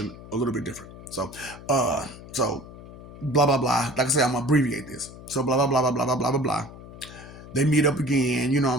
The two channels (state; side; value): noise; left; hum, 16 dB below the sound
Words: a little bit different. So blah blah blah. Like I said, I'm gonna abbreviate this. So blah blah blah blah blah blah blah blah blah. They meet up again. You know what